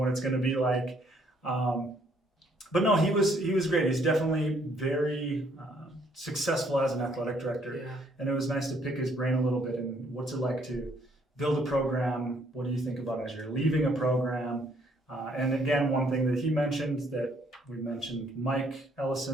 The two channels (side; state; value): both; normal; correlation 0.66